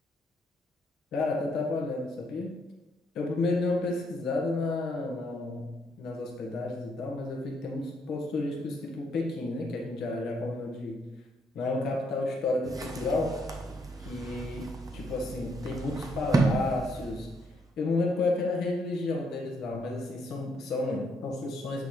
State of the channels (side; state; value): both; normal; correlation 0.73